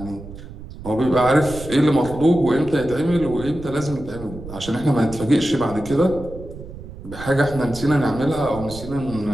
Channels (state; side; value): noise; right; rumble, 13 dB below the sound